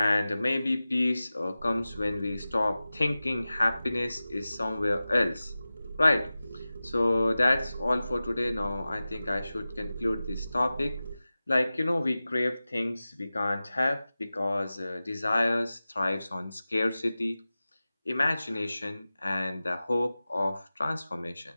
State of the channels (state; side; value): inverted; both; correlation -0.96